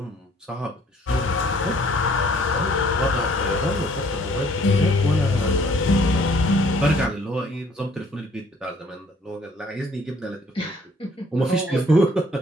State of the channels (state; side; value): normal; both; correlation 0.59